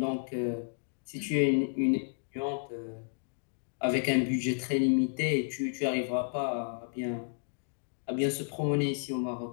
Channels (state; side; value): silent; right; digital silence